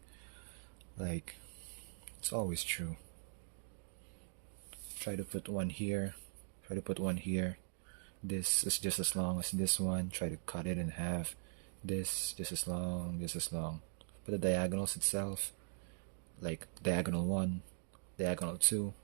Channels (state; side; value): silent; left; digital silence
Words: Like, it's always true. Try to put one here. Try to put one here. This is just as long as this one. Try to cut it in half. This just as long, just as long. But the diagonals itself, like diagonal 1, diagonal 2,